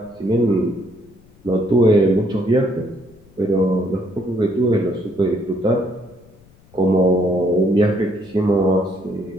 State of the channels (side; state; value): left; noise; rumble, 28 dB below the sound